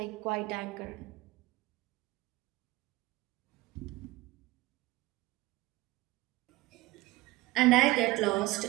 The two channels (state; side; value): quieter; left; 18.7 dB